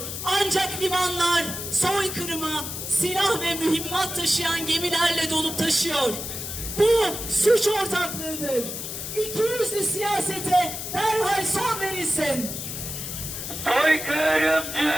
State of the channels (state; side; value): noise; left; hiss, 6 dB below the sound